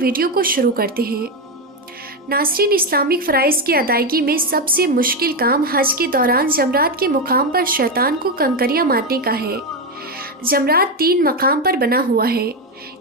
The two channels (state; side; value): normal; both; correlation 0.10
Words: को शुरू करते हैं। नाज़रीन, इस्लामिक फ़राइज़ की अदायगी में सबसे मुश्किल काम हज के दौरान जमरात के मुकाम पर शैतान को कंकरियां मारने का है। जमरात 3 मकाम पर बना हुआ है,